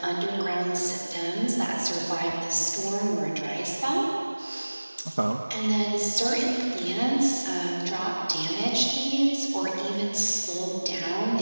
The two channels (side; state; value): both; inverted; correlation -1.00